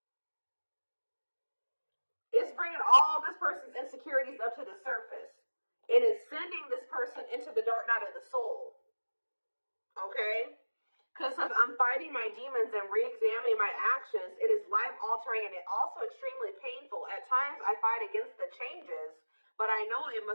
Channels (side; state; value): both; inverted; correlation -1.00